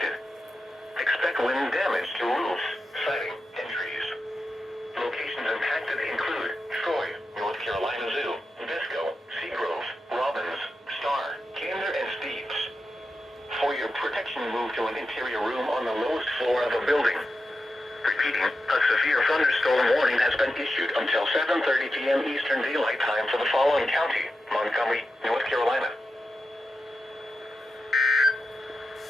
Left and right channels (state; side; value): normal; both; correlation 0.90